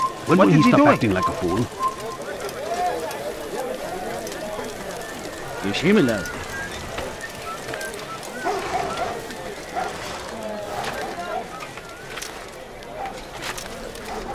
When will he stop acting like a fool? Yeshimilaz.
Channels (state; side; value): identical; both; correlation 1.00